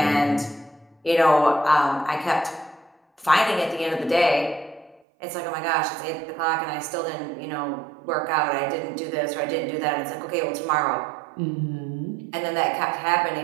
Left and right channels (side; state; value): left; drops out; at 5.0 s